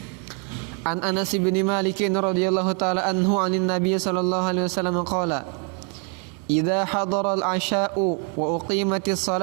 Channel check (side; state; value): left; quieter; 37.0 dB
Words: An Anas bin Malik radhiyallahu taala anhu anin Nabi sallallahu alaihi wasallam qala idza hadara al-'asha'u wa uqimatis